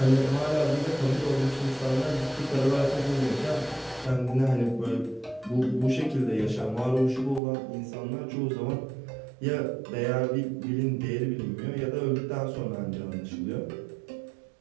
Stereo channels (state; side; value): drops out; left; at 7.4 s